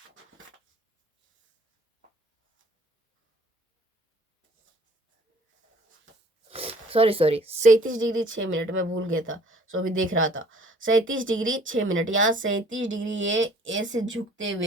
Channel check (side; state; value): both; normal; correlation 0.54